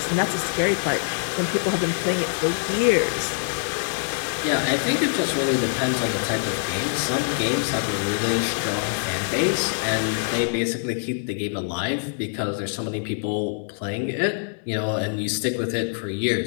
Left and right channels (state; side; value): silent; right; digital silence